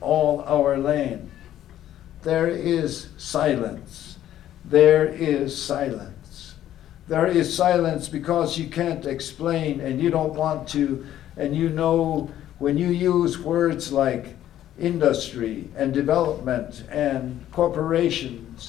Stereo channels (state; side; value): quieter; right; 12.1 dB